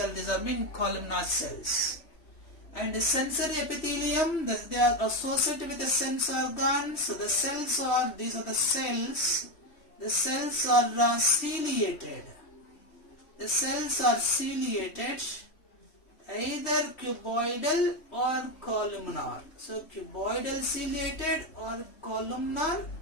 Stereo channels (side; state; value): right; late; 3.1 ms